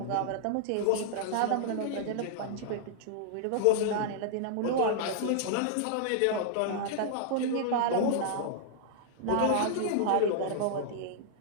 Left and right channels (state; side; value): different; both; correlation -0.01